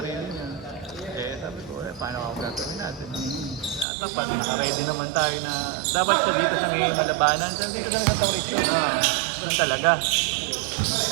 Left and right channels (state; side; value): drops out; left; at 3.9 s